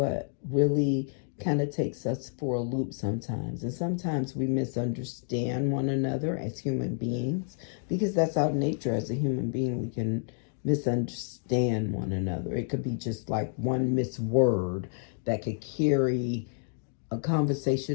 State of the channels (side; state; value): right; silent; 58 dB below the other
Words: really kind of takes us for a loop sometimes. And sometimes we misunderstand one another as human beings, because that's our nature as a human being. We can misunderstand one another. It could be just like one misword that could carry a